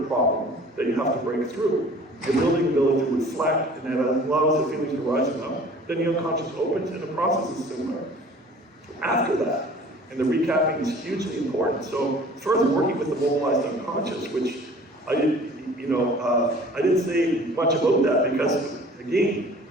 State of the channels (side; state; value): both; normal; correlation 0.48